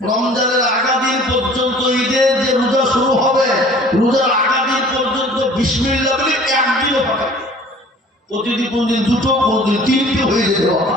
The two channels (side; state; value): both; normal; correlation 0.49